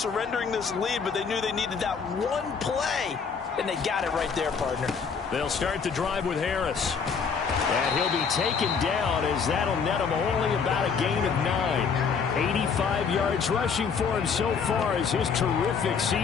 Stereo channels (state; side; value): quieter; right; 5.9 dB